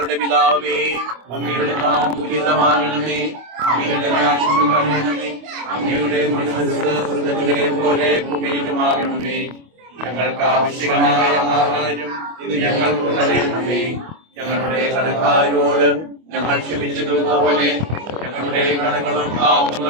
പിതാവേ, അങ്ങയുടെ നാമം പൂജിതമാകണമേ. അങ്ങയുടെ രാജ്യം വരണമേ. അങ്ങയുടെ തിരുമനസ്സ് സ്വർഗ്ഗത്തിലെ പോലെ ഭൂമിയിലുമാകണമേ. ഞങ്ങൾക്ക് ആവശ്യമായ ആഹാരം ഇത് ഞങ്ങൾക്ക് തരണമേ. ഞങ്ങളുടെ കടക്കാരോട് ഞങ്ങൾ ക്ഷമിച്ചതുപോലെ ഞങ്ങളുടെ കടങ്ങളും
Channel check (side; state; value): left; late; 25 ms